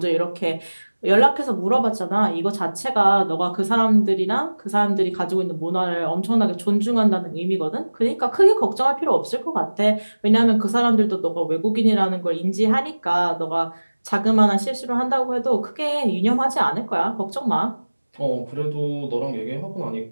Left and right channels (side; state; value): both; inverted; correlation -1.00